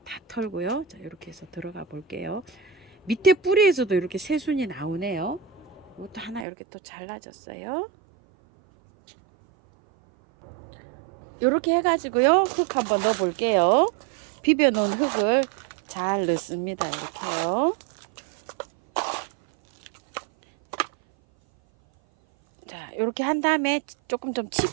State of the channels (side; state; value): left; drops out; at 6.5 s